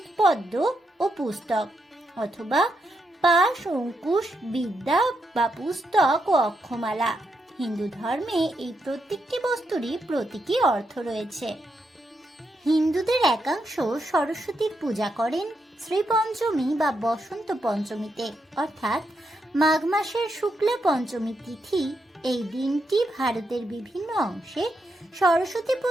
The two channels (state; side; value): normal; both; correlation 0.82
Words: পদ্ম ও পুস্তক, অথবা পাশ, অঙ্কুশ, বিদ্যা বা পুস্তক ও অক্ষমালা। হিন্দু ধর্মে এই প্রত্যেকটি বস্তুরই প্রতীকী অর্থ রয়েছে। হিন্দুদের একাংশ সরস্বতীর পূজা করেন শ্রীপঞ্চমী বা বসন্ত পঞ্চমীতে, অর্থাৎ মাঘ মাসের শুক্লা পঞ্চমী তিথি। এই দিনটি ভারতের বিভিন্ন অংশে সরস্বতী